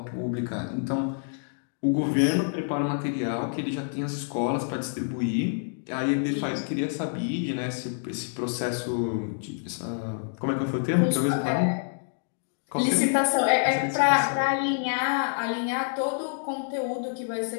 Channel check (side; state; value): right; silent; digital silence